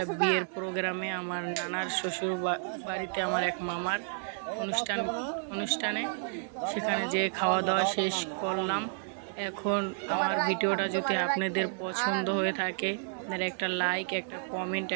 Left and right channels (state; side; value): silent; left; 57 dB below the other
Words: বিয়ের প্রোগ্রামে, আমার নানার শ্বশুর বাড়িতে, আমার এক মামার অনুষ্ঠানে। সেখানে যে খাওয়া দাওয়া শেষ করলাম। এখন আমার ভিডিওটা যদি আপনাদের পছন্দ হয়ে থাকে, আপনারা একটা লাইক, একটা কমেন্ট,